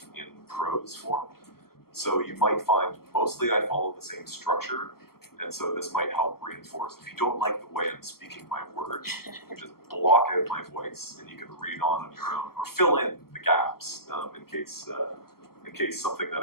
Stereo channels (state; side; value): late; right; 0.94 ms